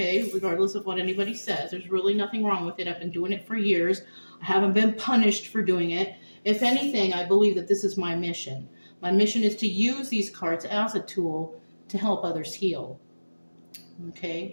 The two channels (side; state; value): both; inverted; correlation -1.00